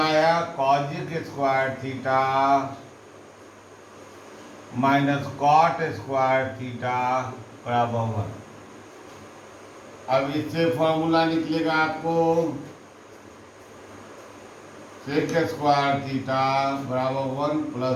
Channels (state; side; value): identical; both; correlation 1.00